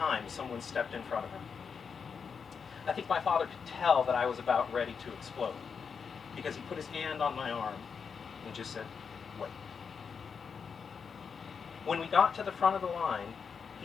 someone stepped in front of her. I think my father could tell that I was about ready to explode, because he put his hand on my arm and just said, "Wait." When we got to the front of the line,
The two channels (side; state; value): right; quieter; 6.1 dB